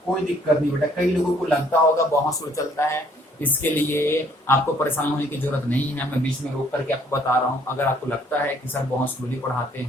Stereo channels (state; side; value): normal; both; correlation 0.63